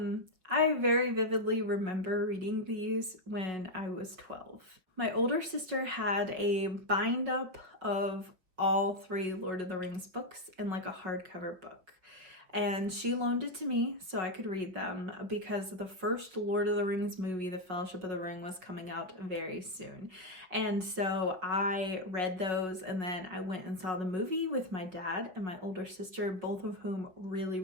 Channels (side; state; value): left; late; 5.8 ms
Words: very vividly remember reading these when I was 12. My older sister had a bind up of all 3 Lord of the Rings books in like a hardcover book. And she loaned it to me so I could read them because the first Lord of the Rings movie, The Fellowship of the Ring, was coming out very soon. And so I read those, and then I went and saw the movie with my dad and my older sister, both of whom really,